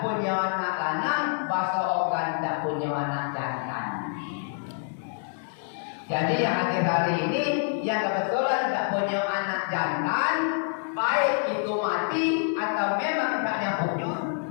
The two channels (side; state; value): right; silent; 57 dB below the other